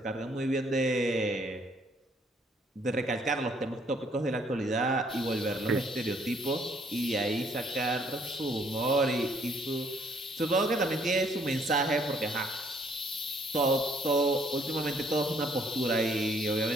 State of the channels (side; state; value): both; normal; correlation 0.65